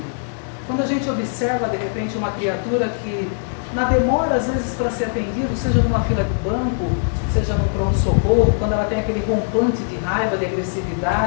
Quando a gente observa, de repente, uma criatura que, na demora, às vezes, para ser atendido, seja numa fila de banco, seja no pronto-socorro, quando ela tem aquele rompante de raiva, de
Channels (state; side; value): silent; right; digital silence